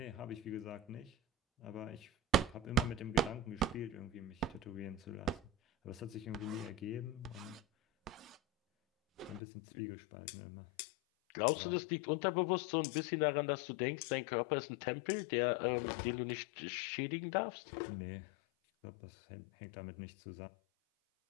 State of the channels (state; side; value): drops out; right; at 9.4 s